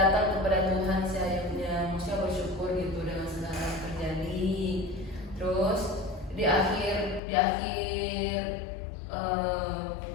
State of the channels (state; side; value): drops out; right; at 7.2 s